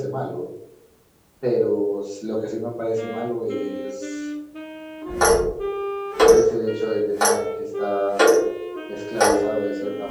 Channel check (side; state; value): both; identical; correlation 1.00